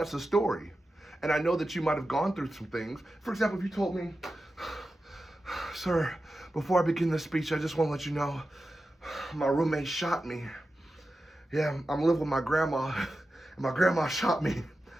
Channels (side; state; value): both; normal; correlation 0.92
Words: a story. And I know that you might have gone through some things. For example, if you told me, sir, before I begin this speech, I just want to let you know, my roommate shot me. Yeah, I'm living with my grandma, and my grandma shot me.